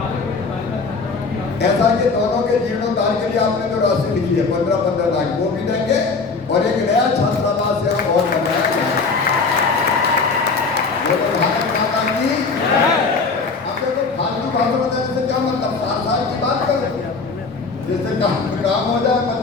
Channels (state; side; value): quieter; right; 4.4 dB